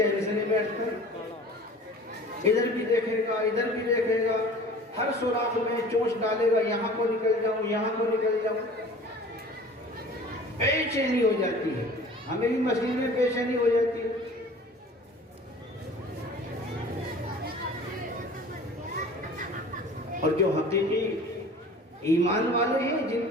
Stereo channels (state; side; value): normal; both; correlation 0.44